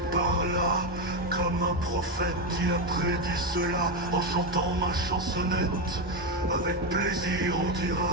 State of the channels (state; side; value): normal; both; correlation 0.09